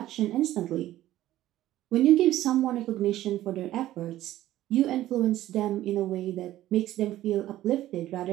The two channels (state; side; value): quieter; left; 14.3 dB